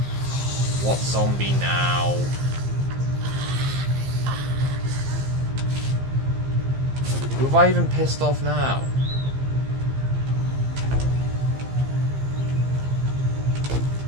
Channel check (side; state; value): left; late; 15 ms